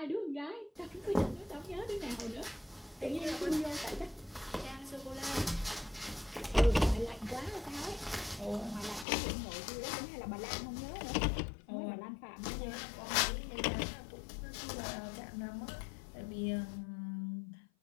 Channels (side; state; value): right; drops out; at 9.1 s